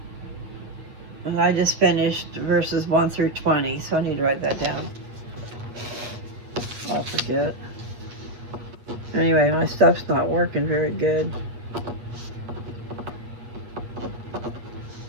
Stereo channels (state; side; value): late; left; 8.4 ms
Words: And I just finished verses 1 through 20, so I need to write that down. I'll forget. Anyway, my stuff's not working very good.